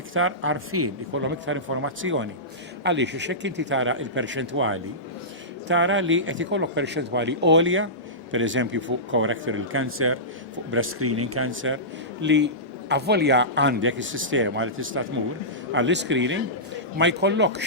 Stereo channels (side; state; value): both; normal; correlation -0.19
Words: iktar għarfien, ikollhom iktar informazzjoni. Għaliex hekk inti tara il-perċentwali tara li qed ikollok perċentwali għolja, pereżempju fuq colorectal cancer, fuq breast screening cancer, li avvolja għandek is-sistema li tista' tmur għall-screening ma jkollokx